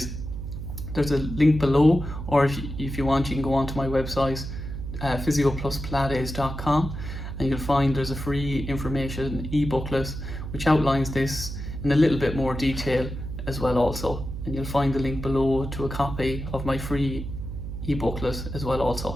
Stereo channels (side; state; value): right; noise; hum, 7 dB below the sound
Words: there's a link below, or if you want, you can go onto my website, physiopluspilates.com, and you'll find there's a free information e-booklet which outlines this in a little bit more detail as well also, and you'll find the link below to a copy of my free e-booklet as well